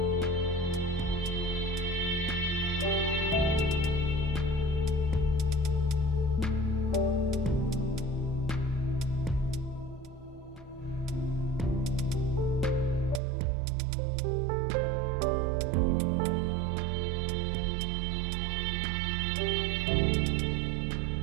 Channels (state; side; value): drops out; left; at 13.2 s